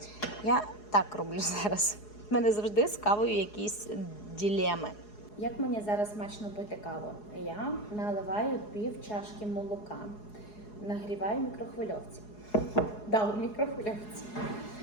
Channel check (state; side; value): late; right; 4.8 ms